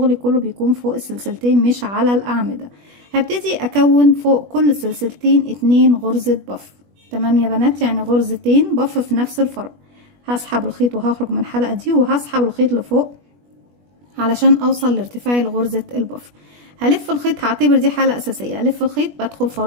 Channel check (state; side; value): late; left; 21 ms